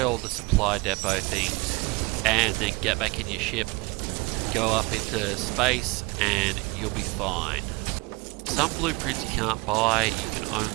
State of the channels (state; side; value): quieter; left; 25.8 dB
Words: all the supply depot things, and then get back in your ship, go up into space, and you'll be fine. Some blueprints you can't buy, you can